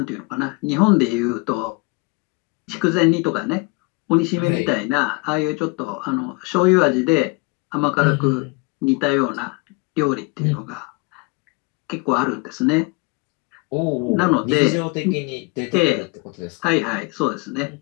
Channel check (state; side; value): quieter; right; 27.4 dB